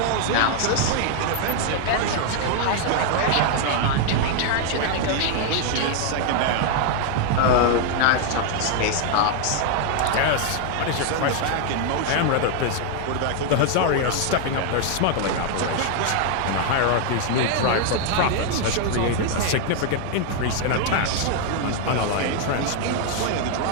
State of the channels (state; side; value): different; both; correlation 0.00